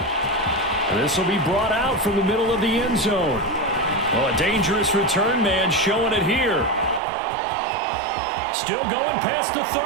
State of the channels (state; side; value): drops out; left; at 7.0 s